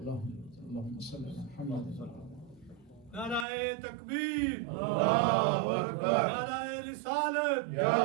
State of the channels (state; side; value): drops out; left; at 3.5 s